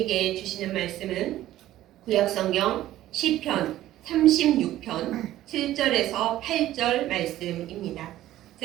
주시는 말씀은 구약성경 시편 36편 7절에서 8절 말씀입니다.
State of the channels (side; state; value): left; quieter; 14.1 dB